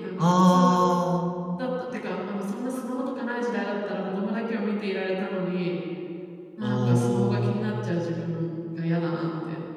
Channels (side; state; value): both; identical; correlation 1.00